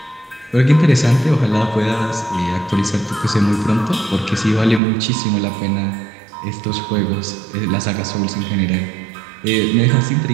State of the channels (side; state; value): left; drops out; at 4.8 s